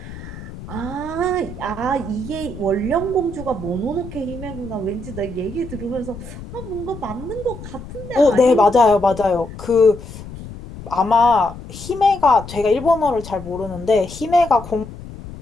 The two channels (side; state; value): left; noise; rumble, 13 dB below the sound